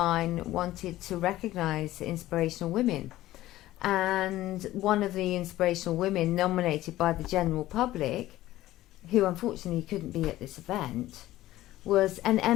wanted to recognise inspirational women. And one of the inspirational women nominated by the general public, who unfortunately couldn't be at this event, was an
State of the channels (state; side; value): quieter; right; 15.5 dB